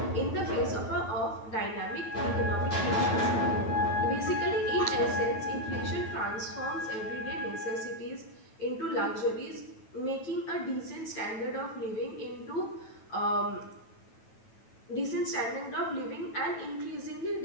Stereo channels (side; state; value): right; late; 9.1 ms